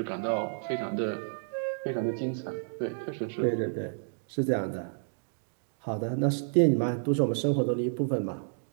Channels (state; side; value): silent; left; digital silence